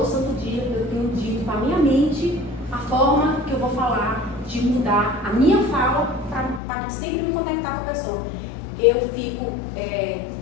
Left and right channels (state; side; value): drops out; right; at 6.6 s